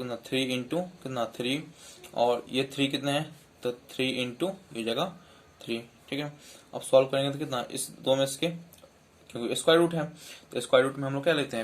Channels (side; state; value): both; identical; correlation 1.00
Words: 3 इंटू कितना 3, और ये 3 कितने हैं तो 3 इंटू ये जगह 3। ठीक है, अब सॉल्व करेंगे तो कितना इस दो में इसके, क्योंकि स्क्वायर रूट है तो स्क्वायर रूट में हम लोग क्या लेते